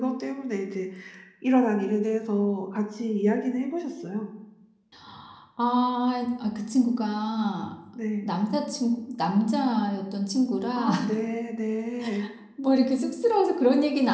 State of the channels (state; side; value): identical; both; correlation 1.00